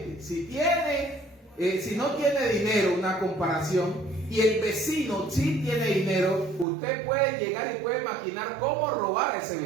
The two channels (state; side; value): drops out; left; at 6.7 s